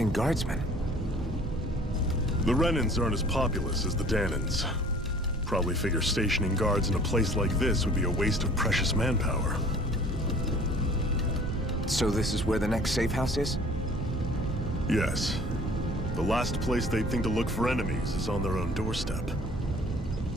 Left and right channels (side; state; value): both; normal; correlation 0.51